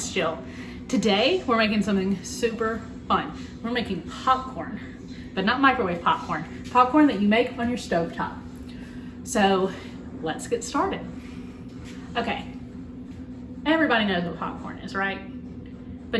Jill. Today, we're making something super fun. We're making popcorn, but not microwave popcorn. Popcorn that you make on your stovetop. So, let's get started. Okay, everybody knows what popcorn is, right?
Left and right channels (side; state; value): both; identical; correlation 1.00